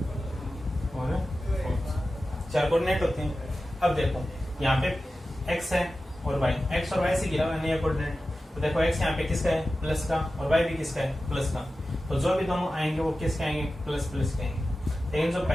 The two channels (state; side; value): normal; both; correlation 0.94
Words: और 4 कोऑर्डिनेट होते हैं। अब देखो यहाँ पे x है और y, x और y से गिरा हुआ है नया कोऑर्डिनेट। तो देखो x यहाँ पे किसका है? प्लस का। और y भी किसका है? प्लस का। तो जो भी दोनों आएंगे वो किसके आएंगे? प्लस प्लस के आएंगे। लेकिन जो